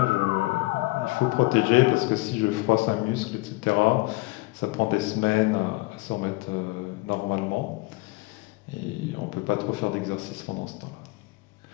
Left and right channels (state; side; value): quieter; right; 22.9 dB